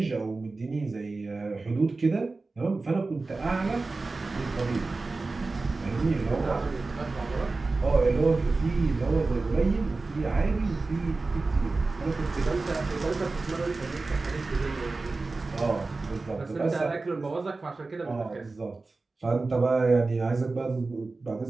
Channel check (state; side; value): quieter; left; 3.6 dB